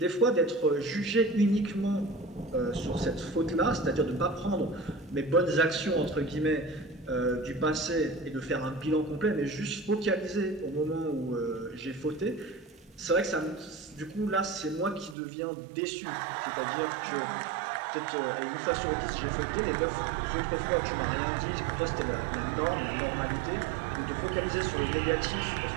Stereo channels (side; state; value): left; drops out; at 15.2 s